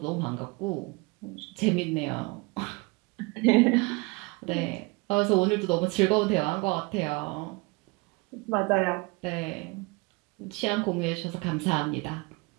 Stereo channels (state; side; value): quieter; left; 26.6 dB